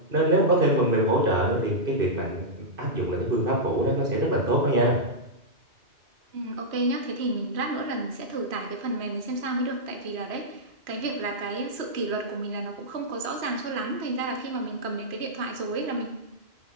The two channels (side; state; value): left; late; 3.0 ms